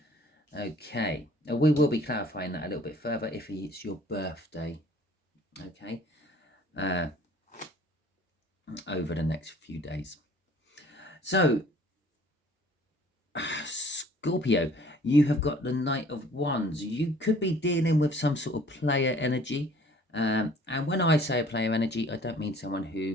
Okay, we will be clarifying that a little bit further if it's your birthday. Okay, over the next few days. So, Scorpio, you have got the Knight of Wands. You could be dealing with some sort of player energy. And when I say a player energy, I don't mean someone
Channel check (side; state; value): both; normal; correlation 0.53